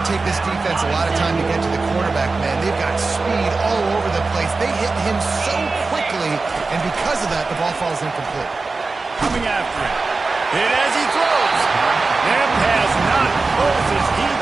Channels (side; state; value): left; quieter; 3.8 dB